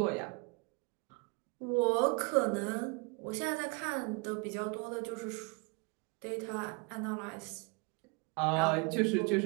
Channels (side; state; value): left; quieter; 31.3 dB